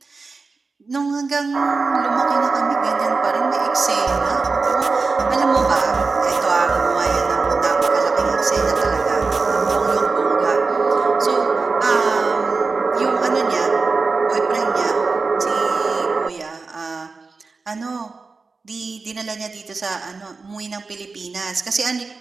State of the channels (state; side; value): quieter; left; 4.2 dB